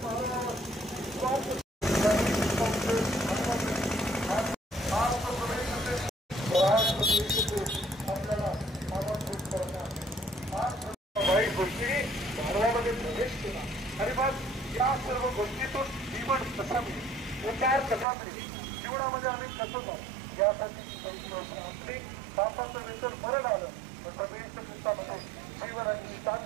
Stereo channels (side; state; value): left; drops out; at 18.1 s